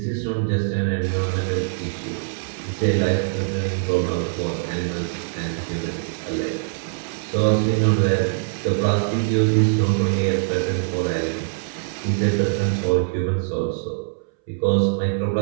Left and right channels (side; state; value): left; silent; 62 dB below the other